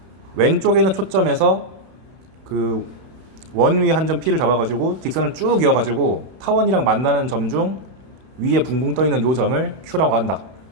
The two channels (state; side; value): late; left; 31 ms